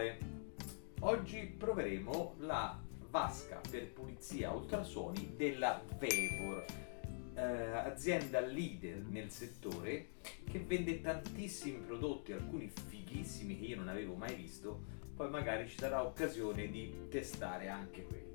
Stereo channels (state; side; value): silent; right; digital silence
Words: Oggi proveremo la vasca per pulizia ultrasuoni della Vevor, azienda leader nel settore che vende tantissimi prodotti, alcuni fighissimi che io non avevo mai visto. Poi magari ci sarà occasione di testare anche